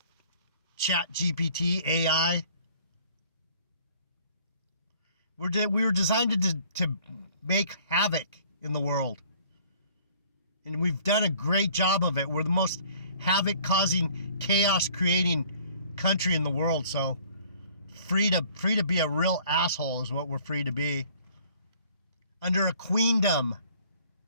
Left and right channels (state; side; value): inverted; both; correlation -0.55